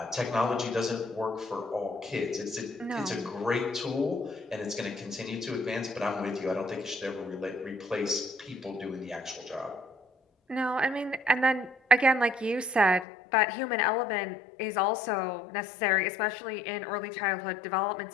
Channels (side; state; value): right; drops out; at 13.1 s